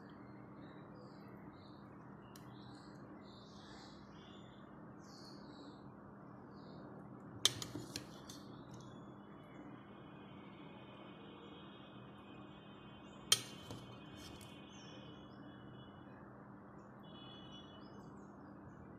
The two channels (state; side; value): identical; both; correlation 1.00